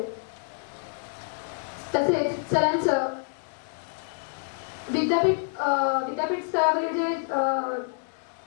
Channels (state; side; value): silent; right; digital silence